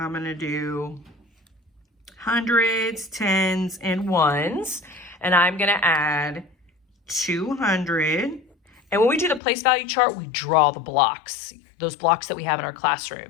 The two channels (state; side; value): drops out; right; at 9.4 s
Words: going to do hundreds, tens, and ones. And I'm going to add 200. And when we do the place value chart, we draw the blocks, those blocks that we have in our